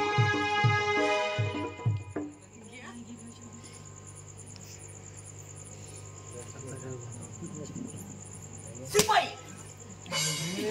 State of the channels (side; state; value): both; identical; correlation 1.00